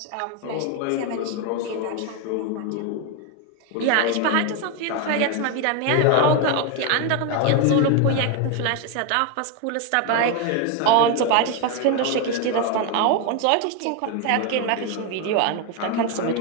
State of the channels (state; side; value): different; both; correlation 0.02